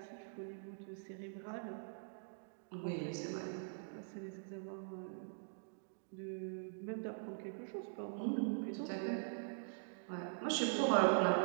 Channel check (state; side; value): silent; left; digital silence